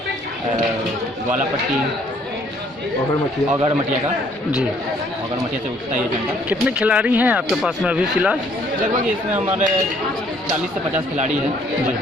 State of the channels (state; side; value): normal; both; correlation 0.63